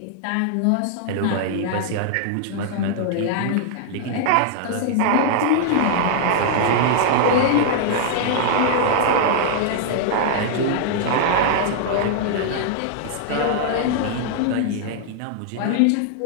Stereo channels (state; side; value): different; both; correlation -0.01